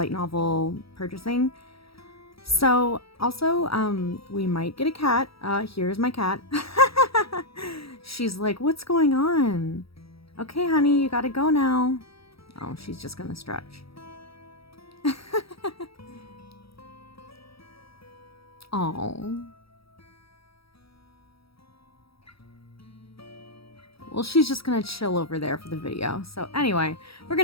novel purchasing. So, also, we might get a cat. Here's my cat. She's like, what's going on? Okay, honey, you gotta go now. Oh, she's just gonna stretch. Oh. Well, she's just gonna chill over there for the video. So anyway, we're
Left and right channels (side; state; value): right; late; 0.76 ms